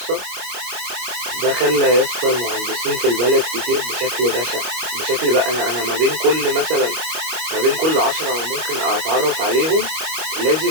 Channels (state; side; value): late; left; 25 ms